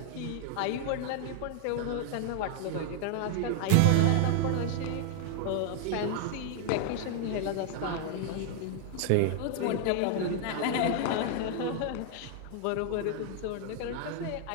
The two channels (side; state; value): both; different; correlation 0.00